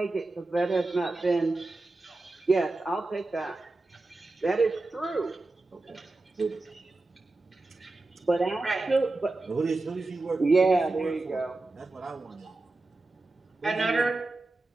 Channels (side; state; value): left; quieter; 3.1 dB